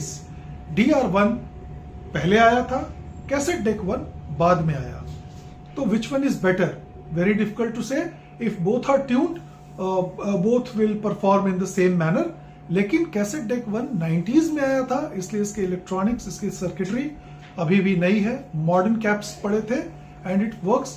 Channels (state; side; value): identical; both; correlation 1.00